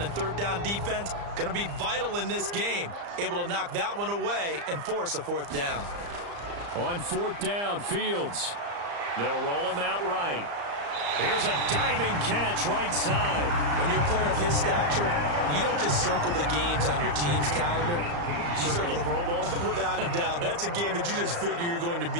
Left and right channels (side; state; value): left; late; 35 ms